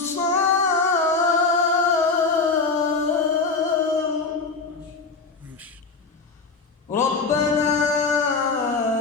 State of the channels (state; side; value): quieter; right; 4.3 dB